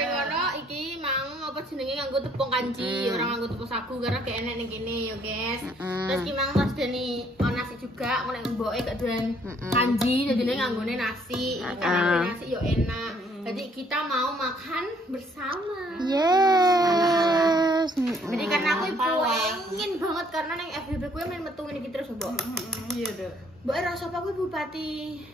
ngono iki mau apa jenenge nganggo tepung kanji, orang nganggo tepung sagu karena gak enak ning kene ya guys. Terus ki mang pas deni nasi juga, nek mboke gak doyan kanji, jadi nganggone nasi. Karena nasi yo enak. Jadi kita mau makan bersama. Yes. Jadi karena aku pengen banget karena neng FBB gue main metu ini terus mbok. Iya, Dok. Mbok rasa apa kuwi Bupati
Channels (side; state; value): both; normal; correlation 0.64